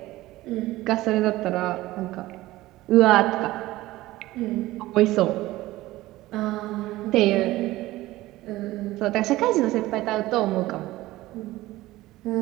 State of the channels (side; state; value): left; quieter; 17.4 dB